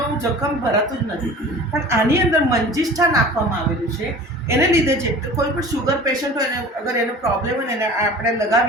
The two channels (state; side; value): normal; both; correlation 0.41